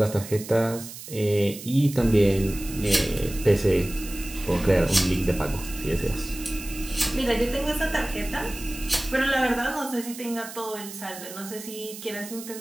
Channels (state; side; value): noise; right; hiss, 13 dB below the sound